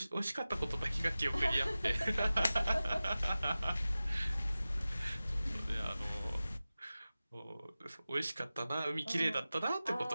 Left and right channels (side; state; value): both; inverted; correlation -0.96